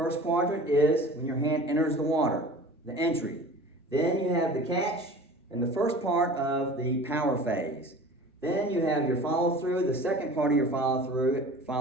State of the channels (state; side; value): normal; both; correlation 0.41